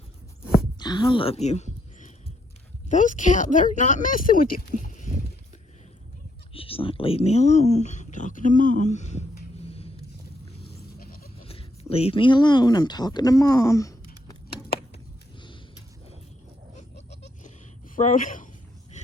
I love you. Those cows, they're not messing with you. She's like, leave me alone. I'm talking to Mom. Leave me alone. I'm talking to Mom. Frodo,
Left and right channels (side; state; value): both; normal; correlation 0.74